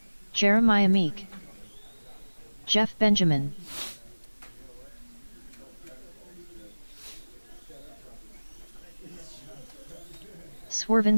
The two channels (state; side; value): inverted; both; correlation -1.00